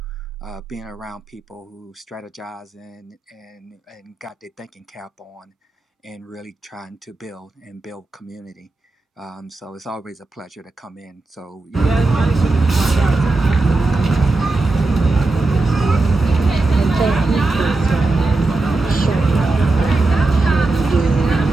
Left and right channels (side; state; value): left; quieter; 3.3 dB